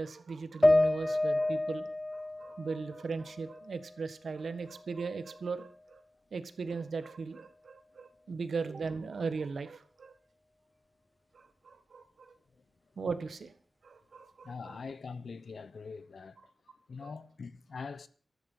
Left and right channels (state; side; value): normal; both; correlation 0.95